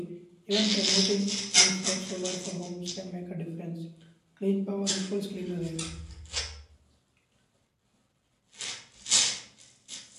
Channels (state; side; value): identical; both; correlation 1.00